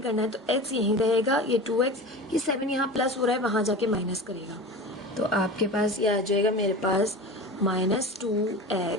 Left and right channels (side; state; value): both; normal; correlation 0.32